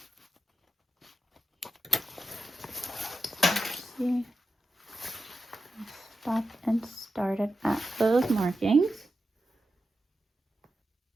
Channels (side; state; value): both; normal; correlation 0.89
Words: See, stop and started at those markings.